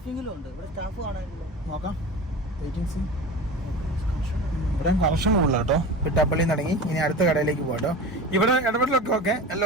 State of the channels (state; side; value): normal; both; correlation 0.31